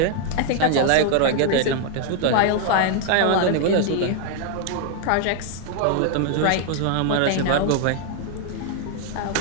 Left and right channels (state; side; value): different; both; correlation 0.00